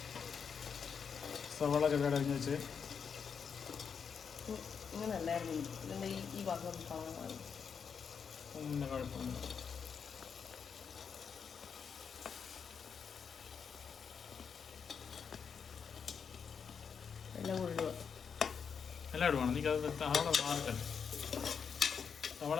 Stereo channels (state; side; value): quieter; right; 6.6 dB